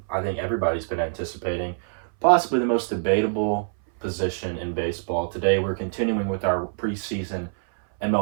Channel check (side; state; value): left; silent; 60 dB below the other